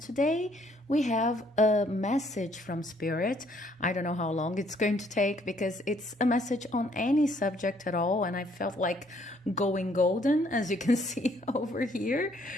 we have a message from Spirit. I don't know how long it's going to take because it's a message on any subject at all, and I felt like going golden, as you can see over here.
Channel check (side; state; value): both; normal; correlation 0.66